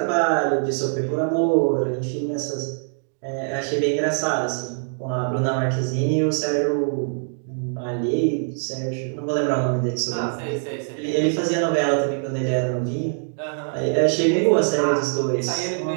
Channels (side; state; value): left; silent; digital silence